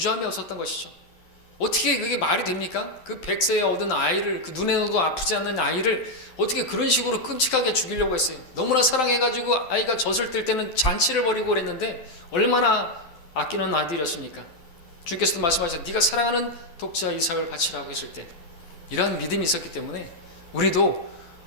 없었던 것이죠. 어떻게 그게 말이 됩니까? 그 100세에 얻은 아이를, 그 눈에도 아프지 않는 아이를 어떻게 그런 식으로 끔찍하게 죽이려고 했어요. 너무나 사랑해가지고 아이가 젖을 뗄 때는 잔치를 벌이고 그랬는데 얼마나 아끼는 아들이었습니까? 주께서도 말씀하셨죠. 네가 사랑하는 독자 이삭을 바치라고 했을 때 이러한 믿음이 있었기 때문에 우리도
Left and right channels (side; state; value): right; late; 12 ms